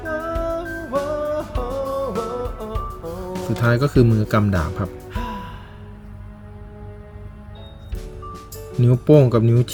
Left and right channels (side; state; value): both; identical; correlation 1.00